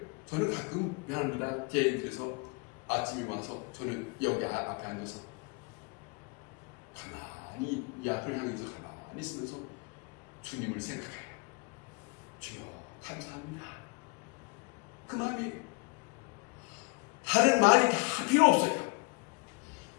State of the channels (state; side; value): quieter; right; 29.1 dB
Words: 저는 가끔 미안합니다. 제 인터에서 아침에 와서 저는 여기 앞에 앉아서 가만히 이 앞을 향해서 가만히 있으면서 주님을 생각해요. 주여 감사합니다. 그 마음이 다른 말이 다 필요 없어요.